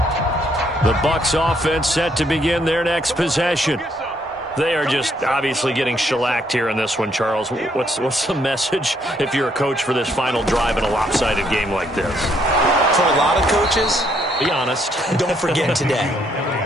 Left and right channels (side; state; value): both; normal; correlation 0.71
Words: The Bucs offense set to begin their next possession. They are just obviously getting shellacked here in this one, Charles. What's the message if you're a coach for this final drive in a lopsided game like this? For a lot of coaches, be honest. Don't forget today.